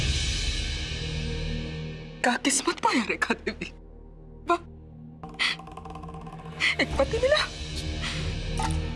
क्या किस्मत पाया रेखा देवी, वाह, एक पति मिला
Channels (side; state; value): both; identical; correlation 1.00